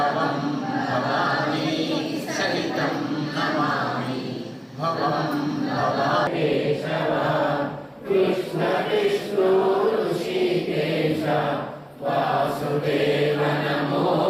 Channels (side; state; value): both; identical; correlation 1.00